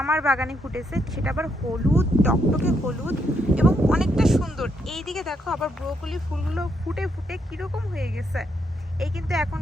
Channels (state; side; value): normal; both; correlation 0.77